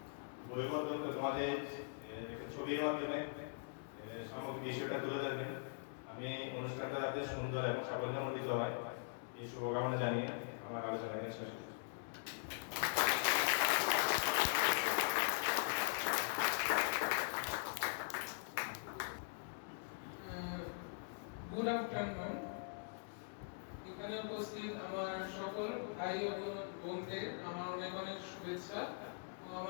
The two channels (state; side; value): silent; right; digital silence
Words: বইবদ্ধ তোমাদের একটা ছবির মাধ্যমে সমগ্র বিষয়টা তুলে ধরবে। আমি অনুষ্ঠানটা যাতে সুন্দর এবং সাফল্যমণ্ডিত হয় এই শুভকামনা জানিয়ে আমার আলোচনা এখানে শেষ করছি। Good afternoon. এখানে উপস্থিত আমার সকল ভাই ও বোনদের আমার অনেক অনেক শুভেচ্ছা ও